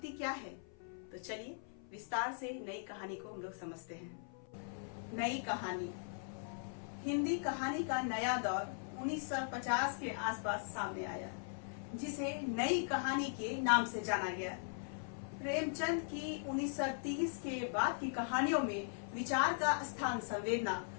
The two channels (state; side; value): silent; right; 51 dB below the other